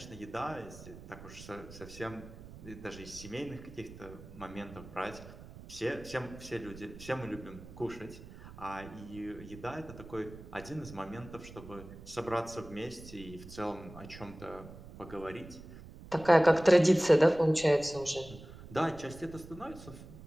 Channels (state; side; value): noise; right; rumble, 16 dB below the sound